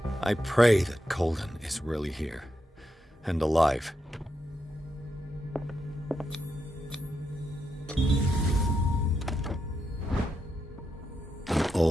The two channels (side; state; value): both; normal; correlation 0.84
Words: I pray that Colden is really here, and alive. An